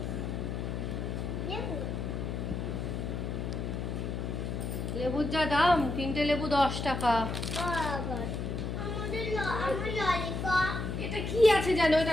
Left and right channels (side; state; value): left; noise; hum, 3 dB below the sound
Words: লেবুর যা দাম, 3টে লেবু 10 টাকা। এটা কি আছে জানো,